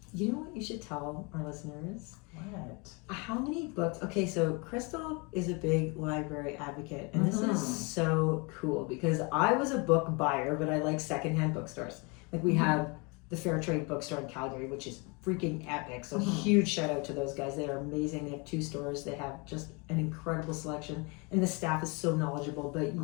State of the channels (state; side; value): quieter; right; 30.2 dB